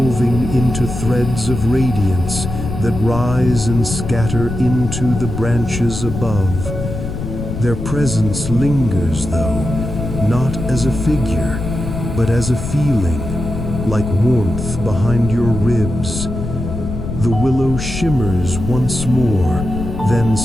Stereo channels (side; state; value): left; noise; rumble, 6 dB below the sound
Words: into threads of radiance that rise and scatter into the branches above. Their presence lingers, though, not as a figure, but as a feeling, like warmth behind your ribs. The willow shimmers once more, then